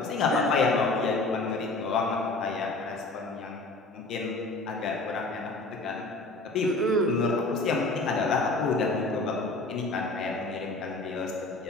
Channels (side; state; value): right; quieter; 3.1 dB